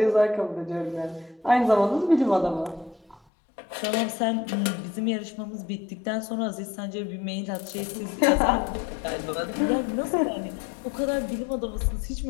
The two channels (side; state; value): right; drops out; at 3.2 s